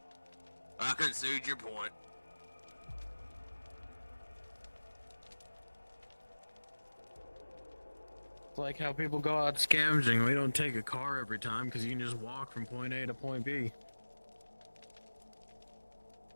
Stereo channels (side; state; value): both; inverted; correlation -1.00